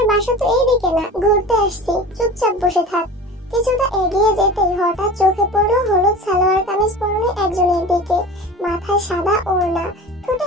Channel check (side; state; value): both; normal; correlation 0.35